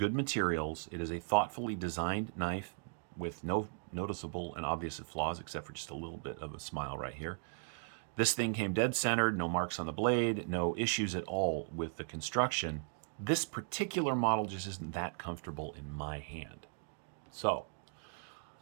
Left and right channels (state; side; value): silent; left; digital silence